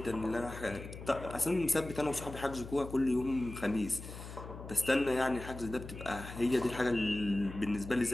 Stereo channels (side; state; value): left; noise; hum, 12 dB below the sound